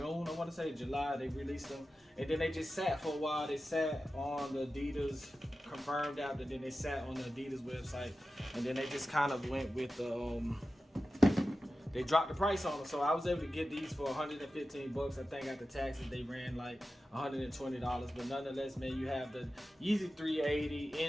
I want to say July. They released them, and then they just sat for a while. They sat on the Adidas confirmed app, and then they sat on the Adidas website, and then they just kind of went with the they dropped the price on them. So I was able to get these for 115 bucks. I think after taxes they ran like $120. But nonetheless, man, you have the Yeezy 380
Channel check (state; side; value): normal; both; correlation 0.93